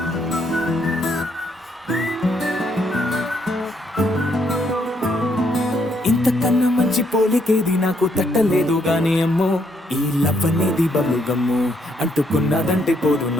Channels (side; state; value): both; normal; correlation 0.73